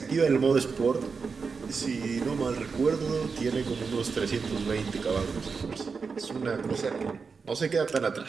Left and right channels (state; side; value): quieter; left; 5.1 dB